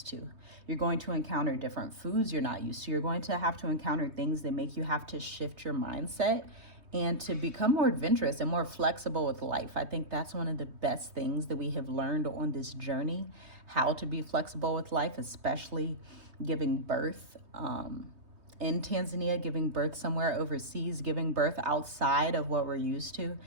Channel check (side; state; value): left; late; 3.2 ms